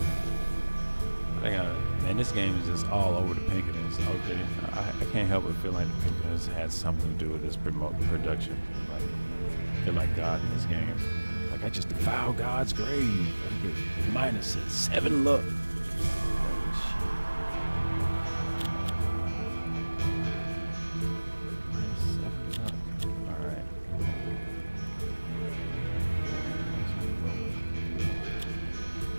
Man, this game is just all over the Pinkertons. Okay, I can't help but feel like the Pinkertons had something to do with this production. Like, they're like God in this game. Like, I just defiled God's grave. I get -7 luck.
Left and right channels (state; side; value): inverted; both; correlation -1.00